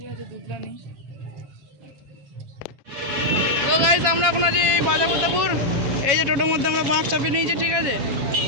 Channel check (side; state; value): left; late; 7.3 ms